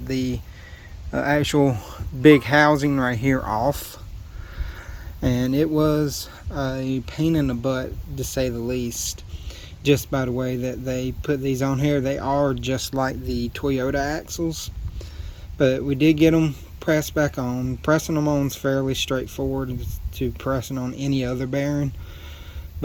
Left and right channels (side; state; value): both; identical; correlation 1.00